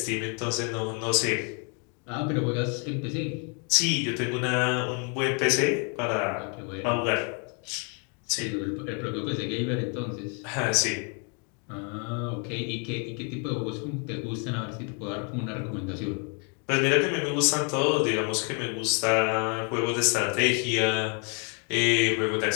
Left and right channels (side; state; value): right; quieter; 38.0 dB